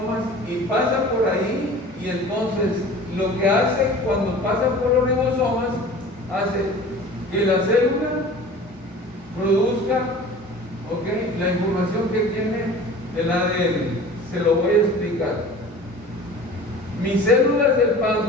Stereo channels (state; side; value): normal; both; correlation 0.41